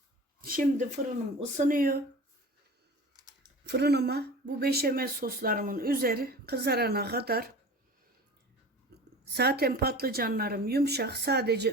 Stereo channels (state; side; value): normal; both; correlation 0.38